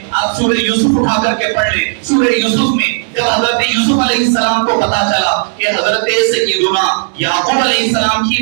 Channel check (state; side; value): silent; left; 71 dB below the other